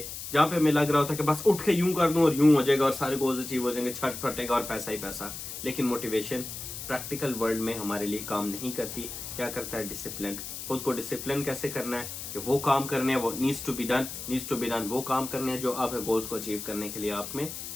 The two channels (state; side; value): noise; left; hiss, 8 dB below the sound